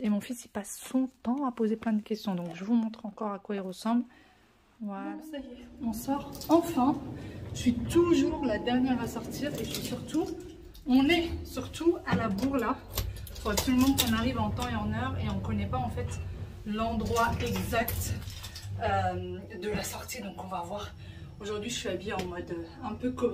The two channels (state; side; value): identical; both; correlation 1.00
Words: Et mon fils, il passe son temps à poser plein de questions. Donc je vous montre encore à quoi il ressemble. Voilà. Bon, ça y est, on sort enfin. Je suis toujours la dernière à sortir. Et on est surtout à la bourre là. Il faut absolument qu'on arrive en temps et en heure. Et on ne connaît pas en fait l'endroit exact de la sortie. Donc on va voir. Aujourd'hui, je suis habillée en mode un peu